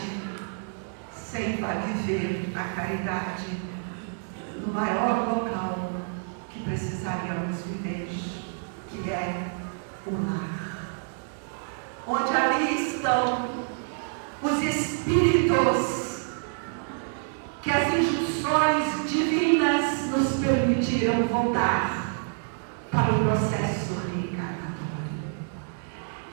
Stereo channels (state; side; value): silent; left; 60 dB below the other